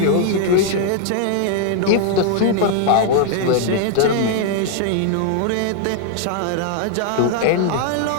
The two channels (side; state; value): both; different; correlation 0.00